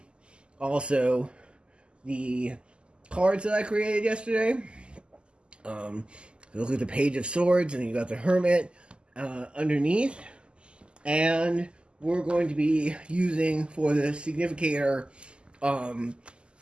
also the cards that I created yesterday. Look at the Page of Swords, and you got the Hermit underneath. And we're going to be using for the significator my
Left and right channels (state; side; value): late; left; 0.050 ms